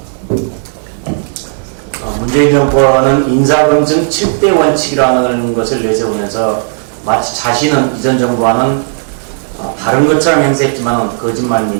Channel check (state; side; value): silent; left; digital silence